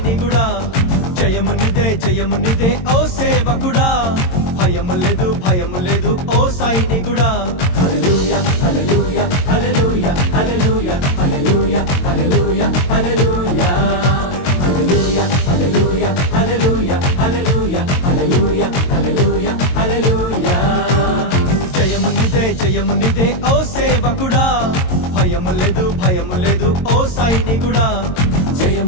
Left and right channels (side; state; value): right; late; 22 ms